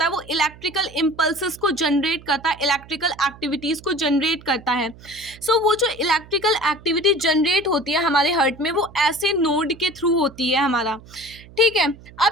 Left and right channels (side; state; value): right; noise; hum, 21 dB below the sound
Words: है वो इलेक्ट्रिकल इम्पल्सेस को जनरेट करता है, इलेक्ट्रिकल एक्टिविटीज़ को जनरेट करता है। सो वो जो इलेक्ट्रिकल एक्टिविटी जनरेट होती है हमारे हार्ट में, वो ऐसे नोड के थ्रू होती है हमारा, ठीक है।